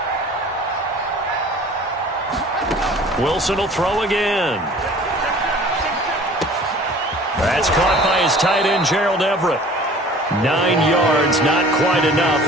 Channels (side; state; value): both; normal; correlation 0.47